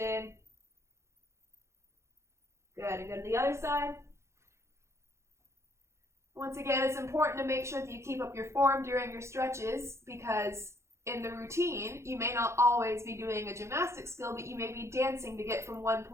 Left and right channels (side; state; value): left; late; 0.13 ms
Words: Good, and go to the other side. Once again, it's important to make sure that you keep up your form during your stretches because in the routine, you may not always be doing a gymnastic skill, but you may be dancing to get from one